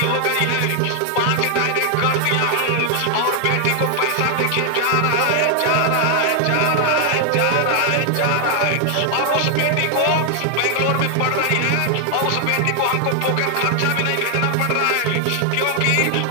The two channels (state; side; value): different; both; correlation 0.00